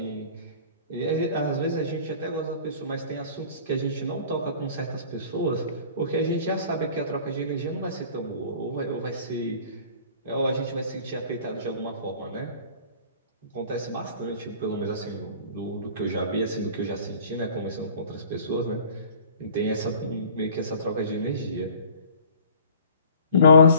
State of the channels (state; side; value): inverted; both; correlation -0.48